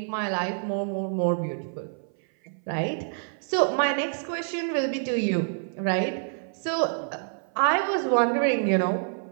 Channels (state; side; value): silent; left; 57 dB below the other